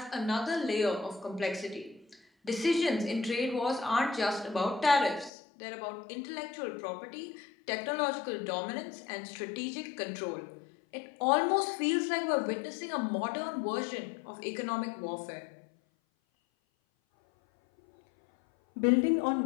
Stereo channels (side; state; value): right; drops out; at 5.3 s